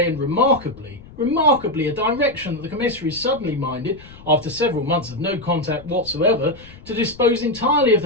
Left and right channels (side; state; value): left; noise; rumble, 20 dB below the sound